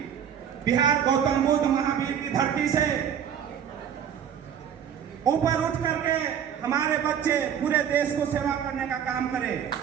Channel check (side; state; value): left; quieter; 8.7 dB